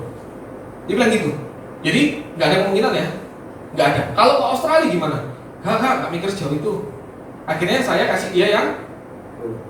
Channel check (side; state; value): both; identical; correlation 1.00